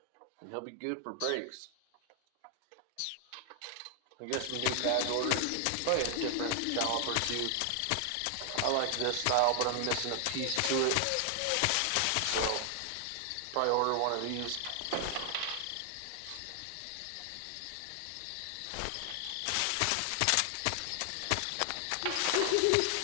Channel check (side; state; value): both; different; correlation 0.00